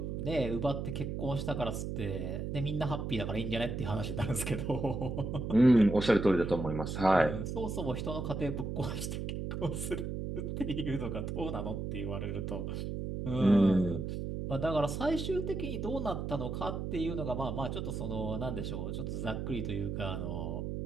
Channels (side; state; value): right; noise; hum, 4 dB below the sound